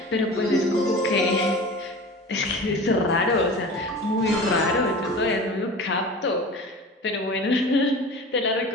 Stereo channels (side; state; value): both; normal; correlation 0.36